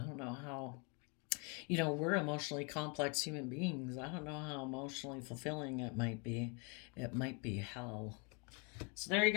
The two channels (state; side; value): quieter; right; 33.0 dB